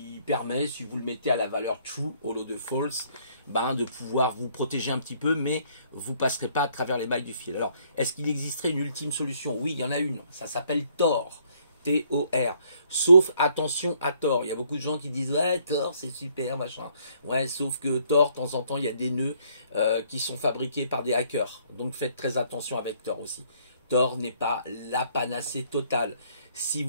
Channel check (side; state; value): both; inverted; correlation -0.65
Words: permet, si vous le mettez à la valeur true au lieu de false, ben, de pouvoir vous protéger un petit peu, mais vous ne passerez pas à travers les mailles du fil. Alors, est-ce qu'il existerait une ultime solution? Oui, il y en a une. Ça s'appelle Tor. T-O-R. Sauf, attention à Tor. Il y a beaucoup de gens qui disent ouais, Tor c'est super, machin. Ouais, sauf que Tor, de temps en temps, il y a des nœuds qui sont fabriqués par des hackers. Donc faites très attention avec Tor aussi. Tor n'est pas la panacée totale. Si